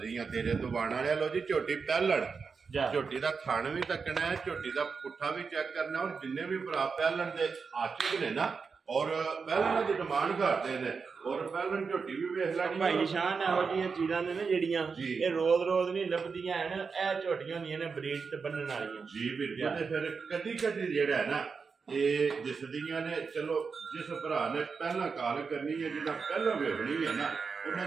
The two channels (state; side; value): quieter; left; 5.2 dB